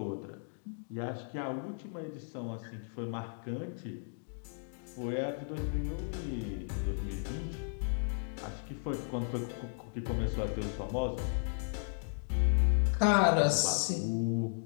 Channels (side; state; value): right; silent; digital silence